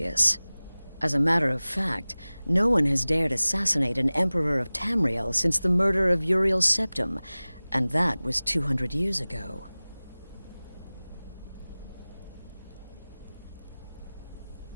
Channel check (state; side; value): inverted; both; correlation -0.99